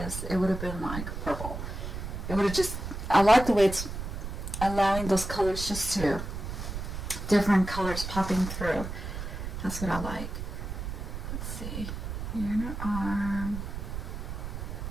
it would have been like purple. It would have just, I like the way it's allowing those colors just to, different colors popping through. That's what I like. Let's see, here in her arm.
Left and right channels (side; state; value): right; noise; rumble, 6 dB below the sound